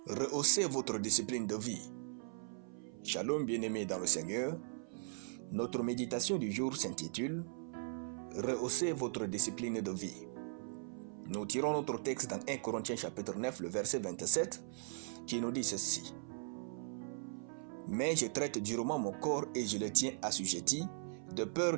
Rehaussez votre discipline de vie. Shalom bien-aimés dans le Seigneur. Notre méditation du jour s'intitule « Rehaussez votre discipline de vie ». Nous tirons notre texte dans 1 Corinthiens chapitre 9, le verset 27, qui nous dit ceci. « Mais je traite durement mon corps et je le tiens assujetti, de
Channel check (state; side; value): silent; left; 52 dB below the other